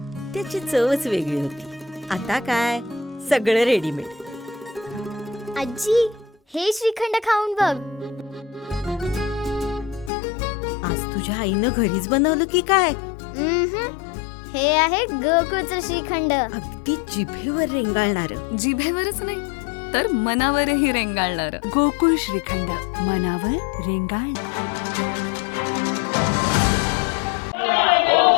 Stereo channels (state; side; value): drops out; right; at 10.1 s